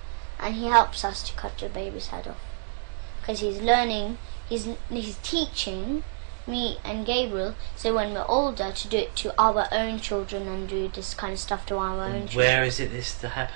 and he helps us to cut the baby's head off. Because he's learning, he's teaching me and Gabriel, so when we're older, to do it to our own children and do this kind of stuff to our own children. Where is it that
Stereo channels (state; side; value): silent; left; digital silence